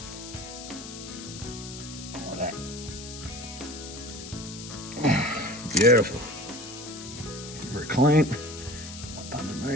Like that. Beautiful. Give her a clean. Up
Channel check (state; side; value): noise; left; hiss, 11 dB below the sound